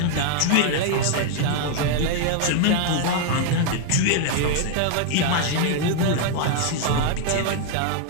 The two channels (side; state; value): both; different; correlation 0.00